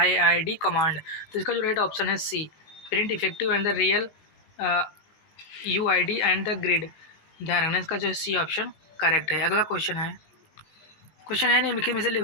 तो इसका जो राइट ऑप्शन है C print effective and the real UID and the grid. ध्यान रखना, इसका जो सी ऑप्शन करेक्ट है। अगला क्वेश्चन है निम्नलिखित में से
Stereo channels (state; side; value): late; right; 19 ms